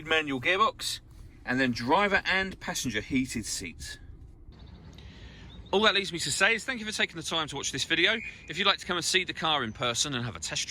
manual gearbox, and then driver and passenger heated seats. All that leaves me to say is thank you for taking the time to watch this video. If you'd like to come and see the car in person and have a test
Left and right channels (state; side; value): identical; both; correlation 1.00